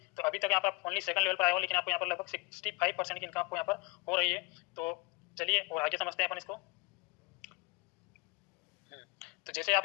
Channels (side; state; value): right; quieter; 26.9 dB